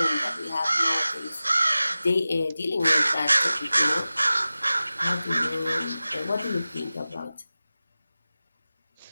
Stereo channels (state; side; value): inverted; both; correlation -0.96